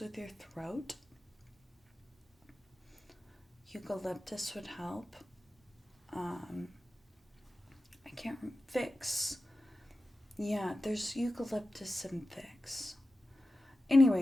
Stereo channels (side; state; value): both; normal; correlation 0.93